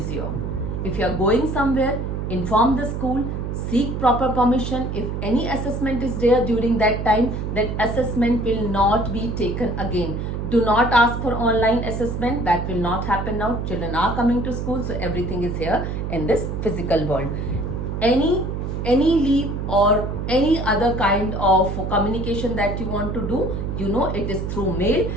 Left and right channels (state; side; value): noise; right; hum, 3 dB below the sound